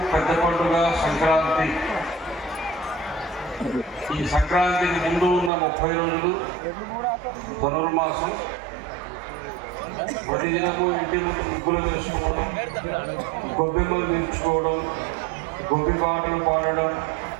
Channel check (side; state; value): left; drops out; at 5.5 s